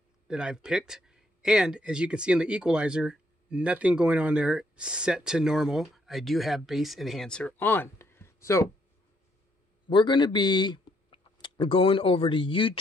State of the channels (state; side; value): normal; both; correlation 0.72